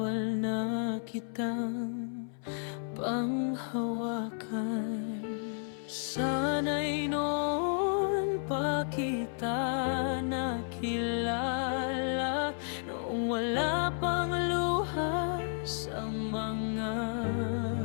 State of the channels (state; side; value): silent; right; 56 dB below the other